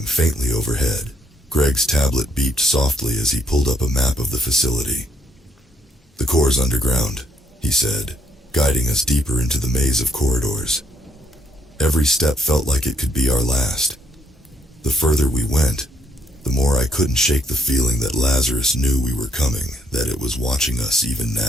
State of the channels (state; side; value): normal; both; correlation 0.71